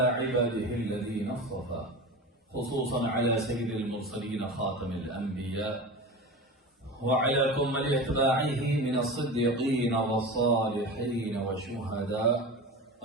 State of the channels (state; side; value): normal; both; correlation 0.29